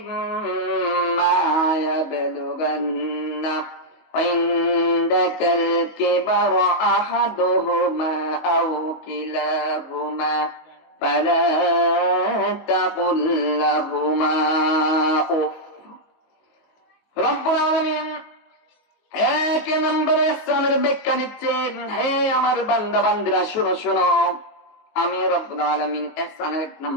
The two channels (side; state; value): right; late; 19 ms